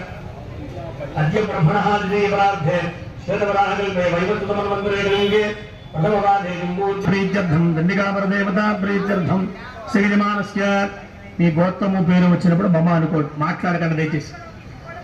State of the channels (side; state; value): both; identical; correlation 1.00